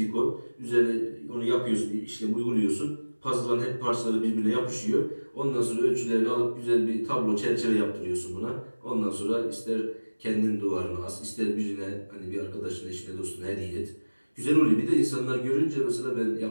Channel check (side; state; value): both; inverted; correlation -1.00